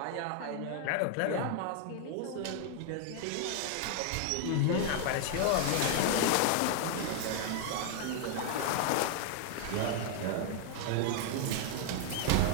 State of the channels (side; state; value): both; different; correlation 0.00